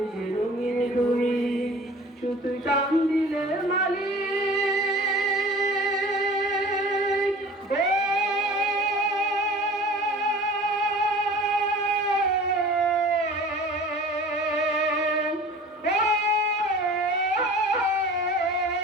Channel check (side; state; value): both; normal; correlation 0.43